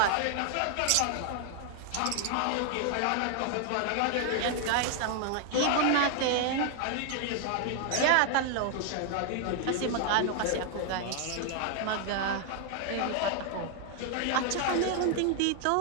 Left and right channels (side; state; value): both; different; correlation 0.00